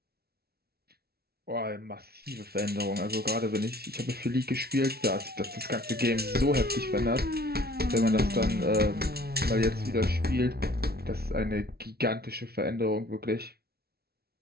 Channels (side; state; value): left; late; 0.45 ms